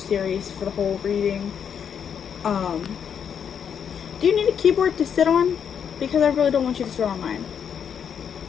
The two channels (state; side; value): quieter; right; 7.7 dB